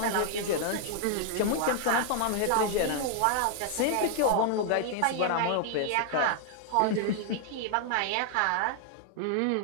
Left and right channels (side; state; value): both; different; correlation 0.00